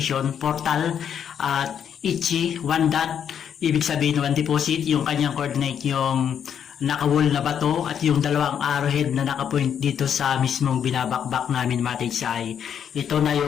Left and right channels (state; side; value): quieter; right; 8.5 dB